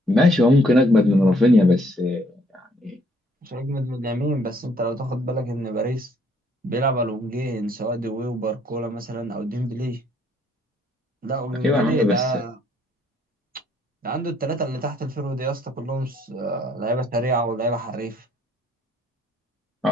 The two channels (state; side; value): normal; both; correlation 0.65